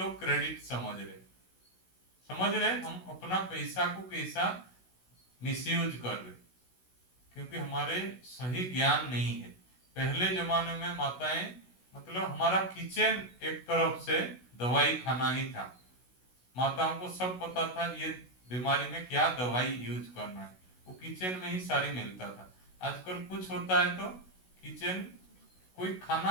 क्रेडिट समझ रहे। हम अपना पैसा को कैसा मिसयूज कर रहे, क्योंकि हमारे सही ज्ञान नहीं है। पहले जमाने में माताएं, मतलब हमारा किचन एक तरफ से दवाई खाना ही था, माताओं को सब पता था ये बीमारी में क्या दवाई यूज करना है, वो किचन में ही सारी मिलता था। आजकल कुछ होता है तो किचन, कोई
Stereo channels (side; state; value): right; late; 16 ms